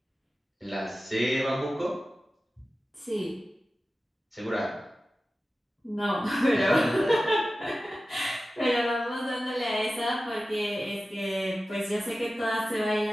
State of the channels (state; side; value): normal; both; correlation 0.95